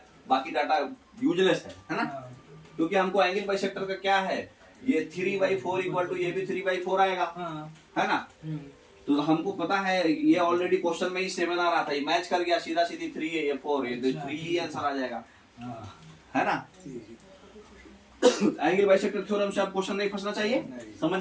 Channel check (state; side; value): identical; both; correlation 1.00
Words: बाकी डाटा यूजलेस है ना, क्योंकि हमको एंगल बाइसेक्टर का क्या है, ये 3/4 इक्वल टू ये भी 3/4 आएगा, है ना। तो हमको पता है, ये ऑलरेडी क्वेश्चन में ही 7 आ रहा था, ये मैच कर गया, सीधा सीधी 3 है, ये 4 है, तो 3 ही आंसर आ जाएगा, है ना। एंगल बाइसेक्टर थ्योरम से आप क्वेश्चन नहीं फंसना चाहिए,